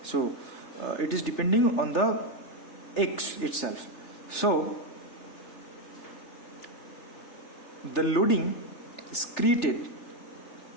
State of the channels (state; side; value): late; right; 3.4 ms